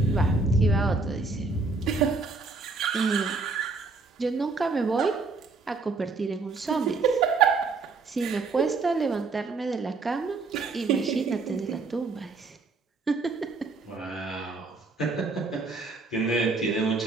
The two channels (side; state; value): left; quieter; 4.0 dB